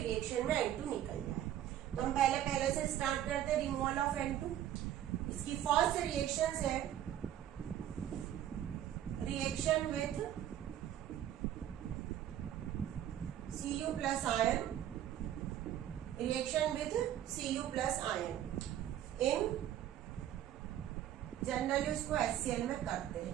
में N2 निकल जाए। तो हम पहले से स्टार्ट करते हैं रिमूवल ऑफ N2। इसकी फर्स्ट रिएक्शन है reaction with Cu plus ion, reaction with Cu plus ion in, generally उसको HCl में करते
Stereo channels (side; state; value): left; quieter; 11.5 dB